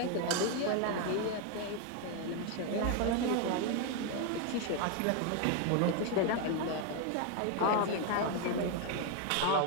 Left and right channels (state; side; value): different; both; correlation 0.01